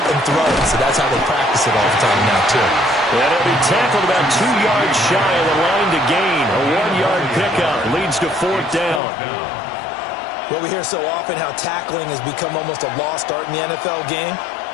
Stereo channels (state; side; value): drops out; right; at 9.0 s